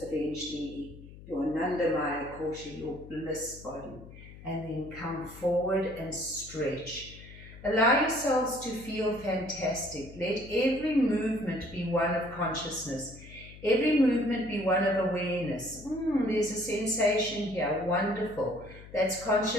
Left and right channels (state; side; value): noise; left; hum, 17 dB below the sound